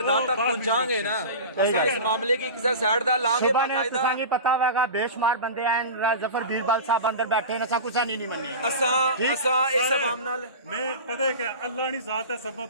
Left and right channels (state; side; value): inverted; both; correlation -0.30